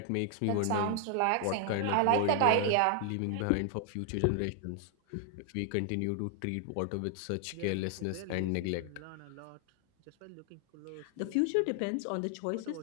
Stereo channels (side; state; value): both; different; correlation 0.00